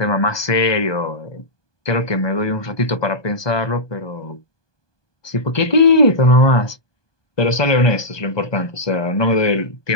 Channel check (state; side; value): late; right; 1.2 ms